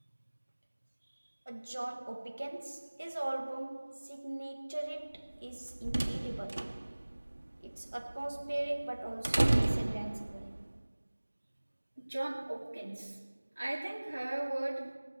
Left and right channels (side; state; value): both; inverted; correlation -1.00